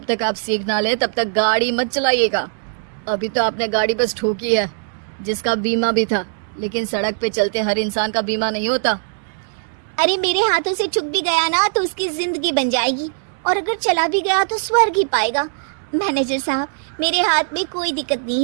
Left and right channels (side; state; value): left; silent; digital silence